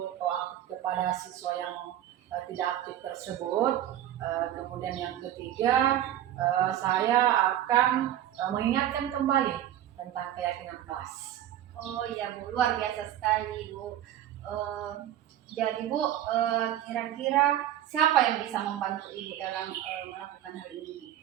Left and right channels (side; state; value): left; quieter; 11.9 dB